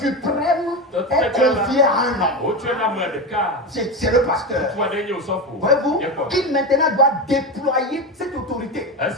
est confiée à un homme. C'est le pasteur. Voyez-vous, il maintenant doit déployer cette autorité en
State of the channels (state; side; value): normal; both; correlation 0.18